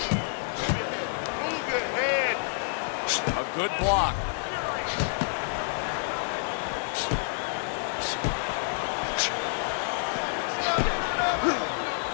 A good block.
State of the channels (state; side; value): silent; right; 59 dB below the other